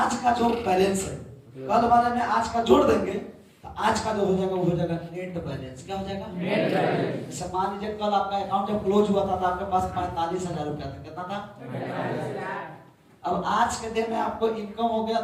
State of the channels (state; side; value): identical; both; correlation 1.00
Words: का जो बैलेंस है, कल वाले में आज का जोड़ देंगे तो आज का जो हो जाएगा वो हो जाएगा नेट बैलेंस। क्या हो जाएगा? Net balance. मान लीजिए कल आपका अकाउंट जब क्लोज हुआ था तो आपके पास 45,000 रुपया था। कितना था? अब आज के दिन में आपको इनकम हो गया